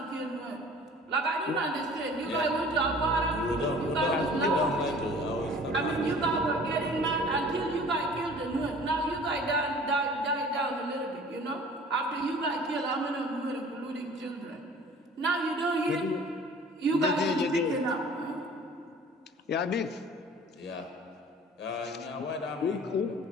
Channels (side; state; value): both; normal; correlation 0.47